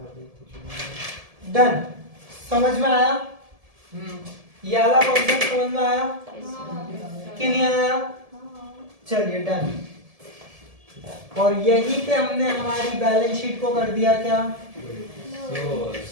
डन। समझ में आया? ये वाला कॉन्सेप्ट समझ में आया कि नहीं आया? चलिए डन। और यहीं पे हमने हमारी बैलेंस शीट को कर दिया क्या?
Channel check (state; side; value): late; left; 1.7 ms